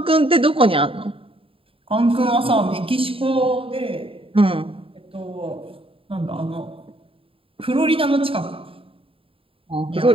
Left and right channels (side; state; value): left; late; 0.27 ms